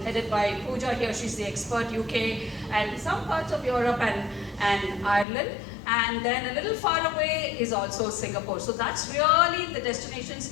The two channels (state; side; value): drops out; right; at 5.2 s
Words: headed by Pooja here. She's the expert UK, and some parts of Europe and Ireland. And then a little far away is also Singapore. So that's really the